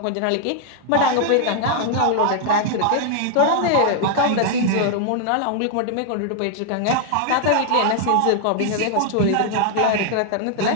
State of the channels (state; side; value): different; both; correlation 0.00